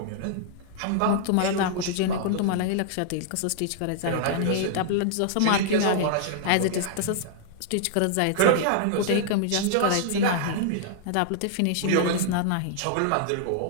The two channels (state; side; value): different; both; correlation -0.01